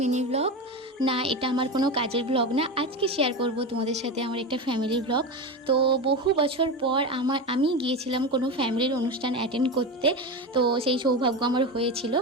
mini blog. না, এটা আমার কোনো কাজের ব্লগ না। আজকে শেয়ার করব তোমাদের সাথে আমার একটা ফ্যামিলির ব্লগ। তো বহু বছর পর আমি গিয়েছিলাম কোনো ফ্যামিলির অনুষ্ঠান অ্যাটেন্ড করতে। তো সেই সৌভাগ্য আমার হয়েছিল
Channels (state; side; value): normal; both; correlation 0.20